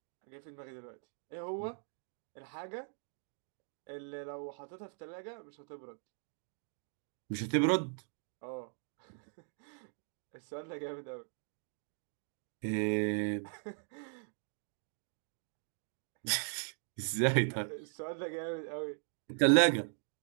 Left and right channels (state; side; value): silent; left; 52 dB below the other